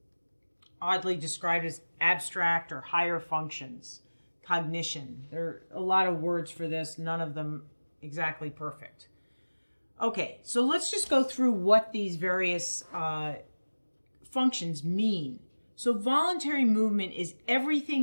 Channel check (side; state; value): both; inverted; correlation -1.00